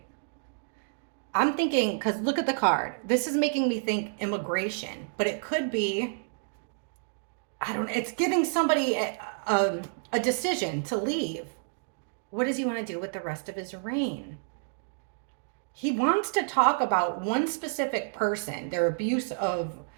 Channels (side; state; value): left; silent; digital silence